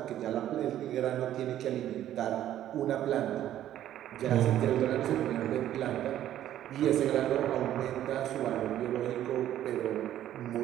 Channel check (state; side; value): quieter; left; 12.1 dB